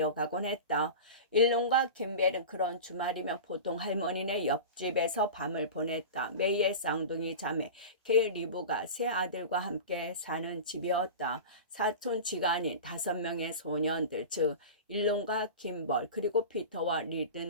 했다. 일론과 김벨은 그런 주말이면 보통 할머니네 옆집에서 밤을 보냈다. 메이의 쌍둥이 자매 케일 리브가 세 아들과 함께 사는 집이었다. 사촌 지간인 5명의 소년들, 즉 일론과 김벌 그리고 피터와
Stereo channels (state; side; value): inverted; both; correlation -0.31